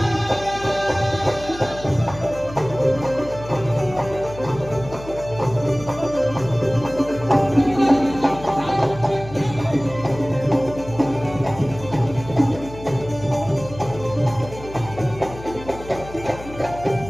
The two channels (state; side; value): noise; left; hum, 15 dB below the sound